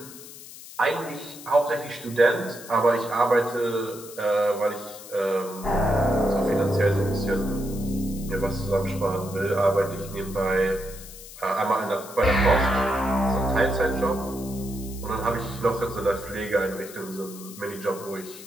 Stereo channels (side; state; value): left; noise; hiss, 16 dB below the sound